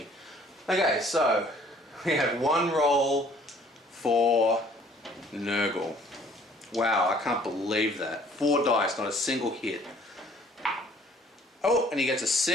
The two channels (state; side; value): normal; both; correlation 0.56